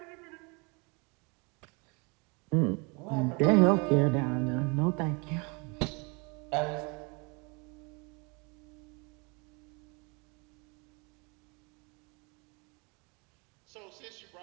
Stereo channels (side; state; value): left; quieter; 30.3 dB